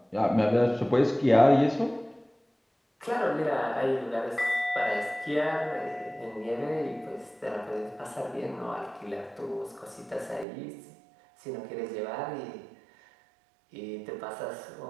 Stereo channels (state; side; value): drops out; left; at 10.5 s